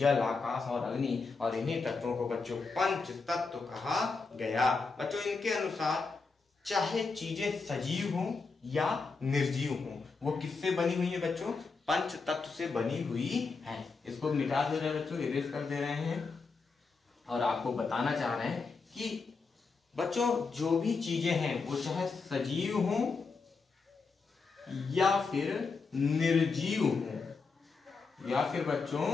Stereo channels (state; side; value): quieter; right; 4.5 dB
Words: आकाश और अग्नि। और इन्हीं तत्वों को बच्चों पंच तत्व कहा गया। बच्चों इनके अनुसार चाहे चीजें सजीव हों या निर्जीव हों, वो किससे बनी हुई है बच्चों? पंच तत्व से बनी हुई है। इसको मिटा दे रहे हैं बच्चों, इरेज कर दे रहे हैं और आपको बताना चाह रहे हैं कि बच्चों जो भी चीजें हैं वो चाहे सजीव हों या फिर निर्जीव हों, या फिर बच्चों